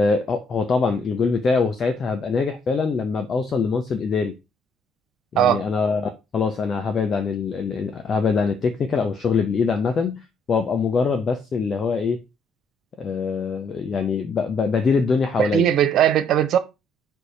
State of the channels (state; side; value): normal; both; correlation 0.67